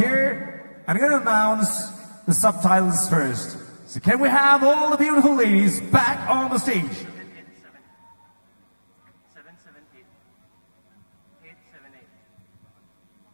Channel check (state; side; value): inverted; both; correlation -1.00